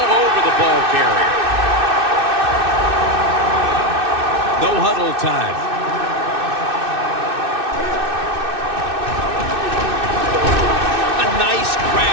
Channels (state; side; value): late; left; 2.6 ms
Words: over the ball carrier. No huddle time. A nice